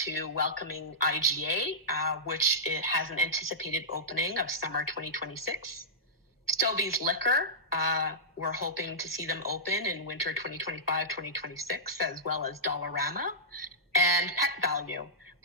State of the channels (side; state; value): both; normal; correlation -0.15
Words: welcoming IGA, which it has an anticipated opening of summer 2026. Stobie's Liquor, we're hoping to see them open in winter 2025-2026, as well as Dollarama. And Pet Value,